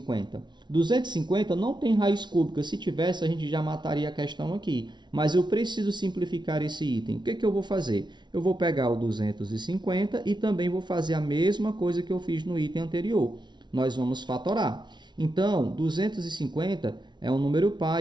250 não tem raiz cúbica. Se tivesse, a gente já mataria a questão aqui. Mas eu preciso simplificar esse item. O que eu vou fazer? Eu vou pegar o 250 e também vou fazer a mesma coisa que eu fiz no item anterior. Nós vamos fatorar. Então, 250 é um número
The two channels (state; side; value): late; left; 0.21 ms